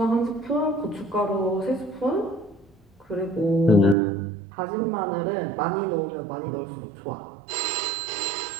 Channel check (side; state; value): left; drops out; at 4.0 s